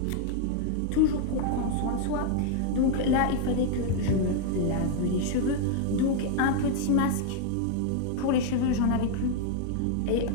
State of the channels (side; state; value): both; different; correlation 0.00